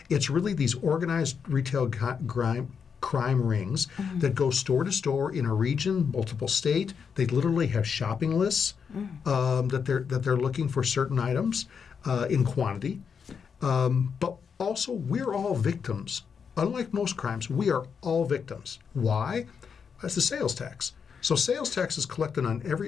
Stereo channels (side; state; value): right; quieter; 6.4 dB